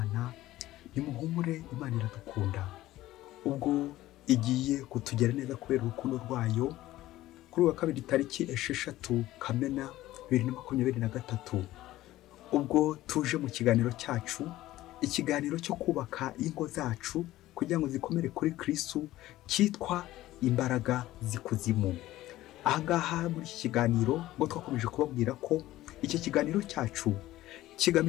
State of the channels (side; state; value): right; quieter; 15.7 dB